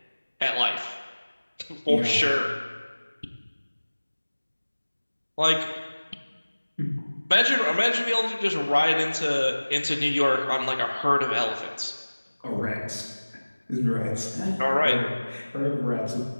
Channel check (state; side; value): inverted; both; correlation -1.00